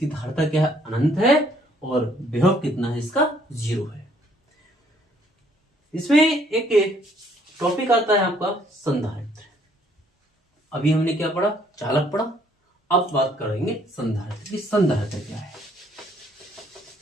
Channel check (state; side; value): normal; both; correlation 0.64